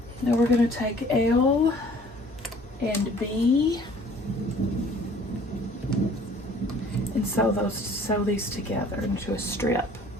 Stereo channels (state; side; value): normal; both; correlation 0.53